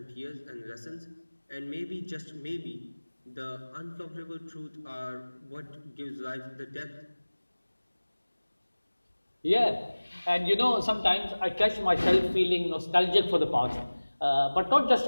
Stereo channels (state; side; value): inverted; both; correlation -1.00